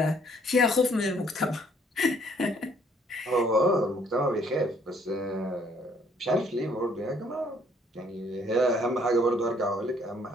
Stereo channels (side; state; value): both; normal; correlation 0.63